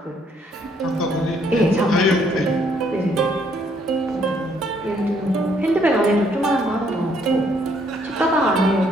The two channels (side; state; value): both; normal; correlation 0.68